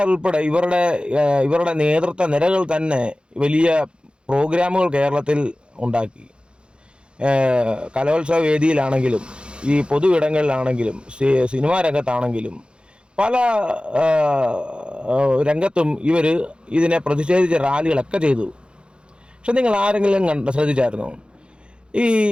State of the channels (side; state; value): left; late; 0.054 ms